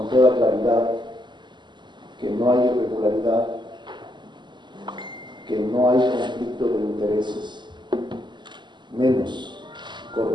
toda claridad que no hay irregularidad, que no hay conflicto de intereses, menos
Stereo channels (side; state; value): left; late; 0.22 ms